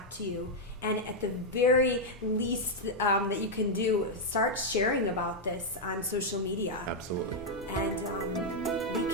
to you. And at the very least that you can do, start sharing about this on social media. Absolutely. And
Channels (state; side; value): normal; both; correlation -0.02